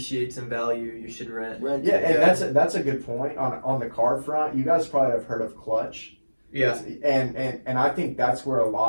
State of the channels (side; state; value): both; inverted; correlation -1.00